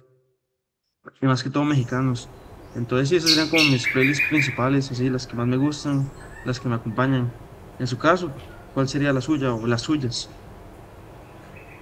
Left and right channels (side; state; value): both; identical; correlation 1.00